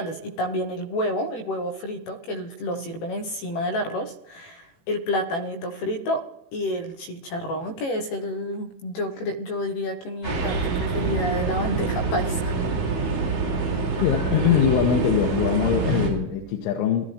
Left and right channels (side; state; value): right; late; 18 ms